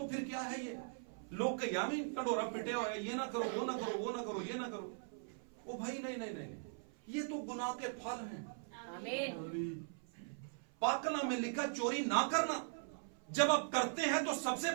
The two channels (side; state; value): left; silent; 51 dB below the other